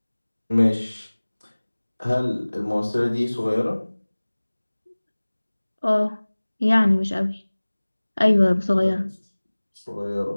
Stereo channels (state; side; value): inverted; both; correlation -1.00